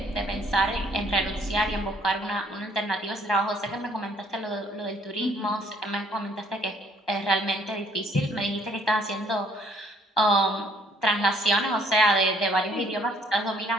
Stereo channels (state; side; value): normal; both; correlation 0.62